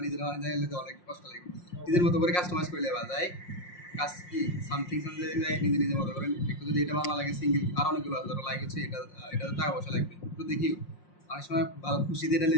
নিজেরা জানলে তো অনেক কষ্ট লাগবে, নিজের মতো করে কাস্টমাইজ করে নেওয়া যায়। কাজ কি সামথিং নিজের মতো করেন একটু, যদি এটা ভালো লাগে সিঙ্গেল আর অনেকগুলো ধরো লাইক হচ্ছে এটা এটাতে টাকা পয়সা লাগবে একটু দেখিও, অনেক সময় ভালো খুশিতে এটা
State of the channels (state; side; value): late; right; 5.6 ms